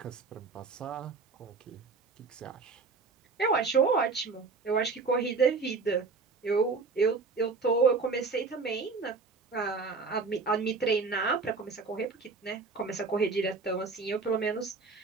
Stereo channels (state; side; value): quieter; left; 4.5 dB